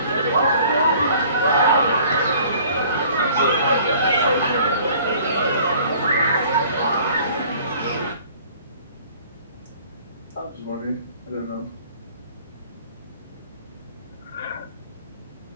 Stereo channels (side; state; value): both; inverted; correlation -0.53